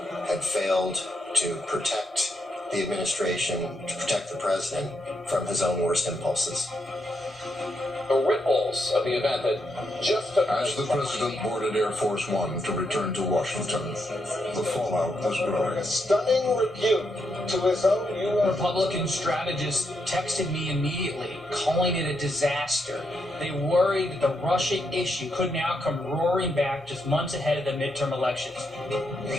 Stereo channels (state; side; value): normal; both; correlation 0.81